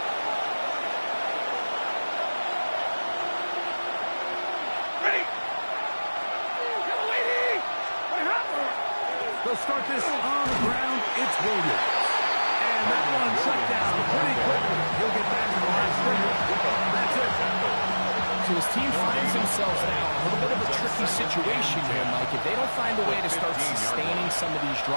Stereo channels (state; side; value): inverted; both; correlation -1.00